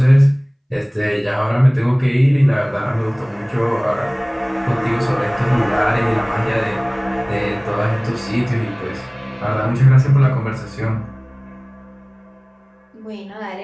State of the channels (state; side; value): identical; both; correlation 1.00